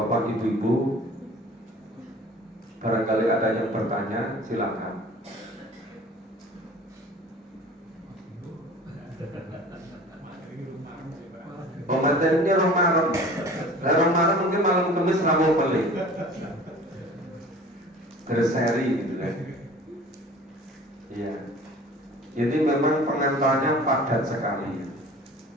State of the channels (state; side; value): normal; both; correlation 0.44